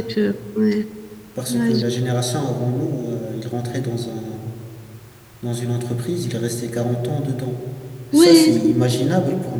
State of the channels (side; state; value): both; identical; correlation 1.00